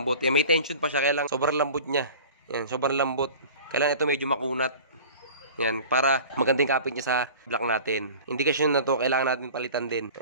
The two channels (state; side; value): inverted; both; correlation -0.41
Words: Ayan, may tension pa siya. Kaya lang sobrang lambot niya. Ayan, sobrang lambot. Kaya lang ito medyo makunat. Ayan, para magandang kapit niya sa block natin. Indikasyon na to, kailangan natin palitan din.